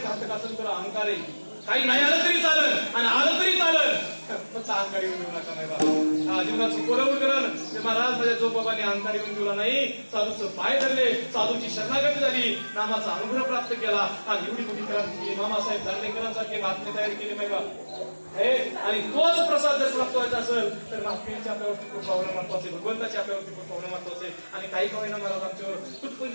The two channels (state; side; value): inverted; both; correlation -1.00